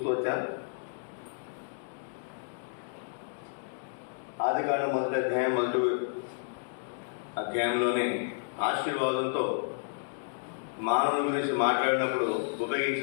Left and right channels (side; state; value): right; silent; digital silence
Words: వచ్చాం. ఆదికాండం మొదటి అధ్యాయంలోనే ఆశీర్వాదంతో మానవుని గురించి మాట్లాడినప్పుడు